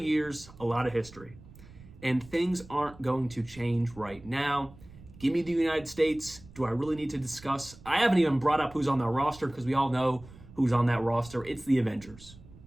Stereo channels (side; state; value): right; noise; rumble, 20 dB below the sound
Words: a lot of history. And things aren't going to change right now. Give me the United States. Do I really need to discuss? I haven't even brought up who's on that roster because we all know who's on that roster. It's the Avengers.